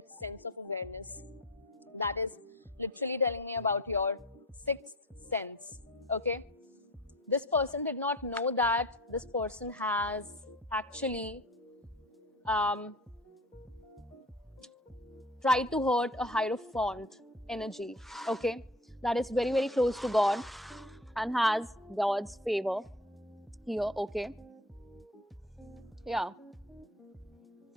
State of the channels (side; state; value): both; normal; correlation 0.40